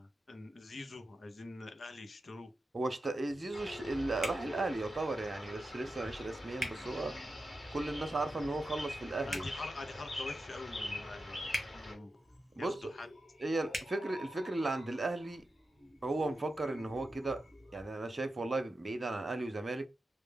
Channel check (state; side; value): normal; both; correlation 0.91